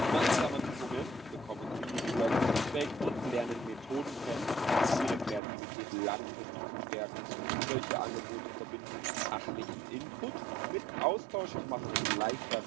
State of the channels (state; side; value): drops out; left; at 5.4 s